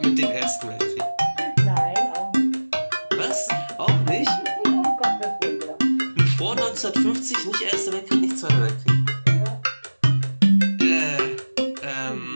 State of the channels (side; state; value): both; inverted; correlation -1.00